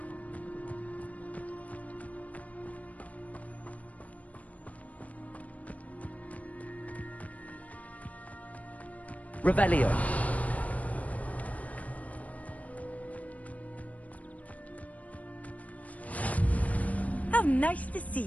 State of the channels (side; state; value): right; late; 0.070 ms